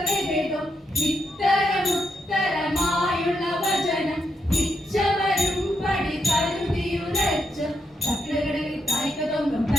ഇത്തരമുത്തരമായുള്ള വചനം ഇച്ചവരും പടി കരുതിയുരച്ച് തക്കിടകിടയിൽ തായ്ക്കതൊങ്കം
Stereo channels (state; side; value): normal; both; correlation 0.81